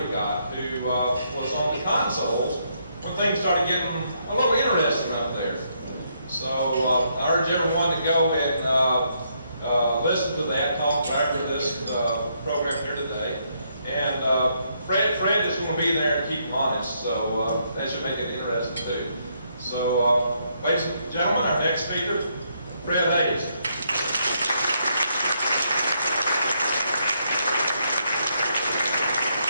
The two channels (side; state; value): both; inverted; correlation -0.75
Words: who was on the consoles when things started getting a little interesting up there. So I urge everyone to go and listen to that talk after this program here today. And Fred is going to be there to keep them honest, so that should make it interesting too. So, ladies and gentlemen, our next speaker, Fred Haise.